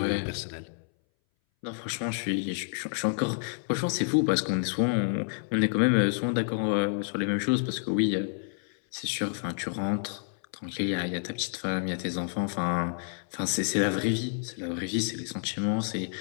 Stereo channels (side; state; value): right; silent; 58 dB below the other